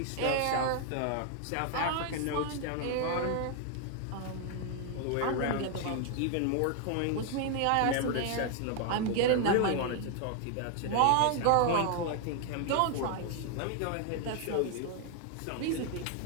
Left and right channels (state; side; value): different; both; correlation 0.00